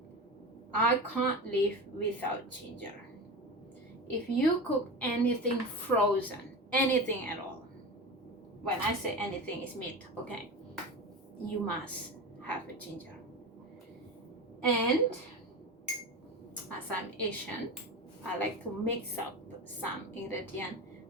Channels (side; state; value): both; normal; correlation 0.26